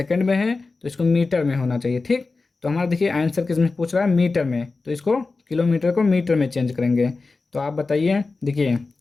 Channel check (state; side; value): quieter; right; 3.8 dB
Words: में है तो इसको मीटर में होना चाहिए। ठीक, तो हमारा देखिए आंसर किस में पूछ रहा है, मीटर में, तो इसको किलोमीटर को मीटर में चेंज करेंगे। तो आप बताइए, देखिए